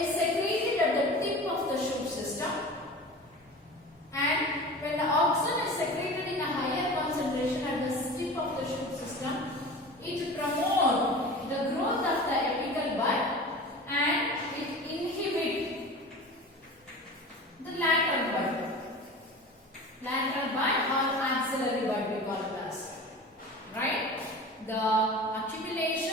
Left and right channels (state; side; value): normal; both; correlation 0.35